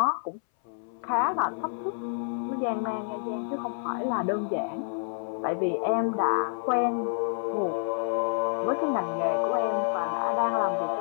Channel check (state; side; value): silent; right; 59 dB below the other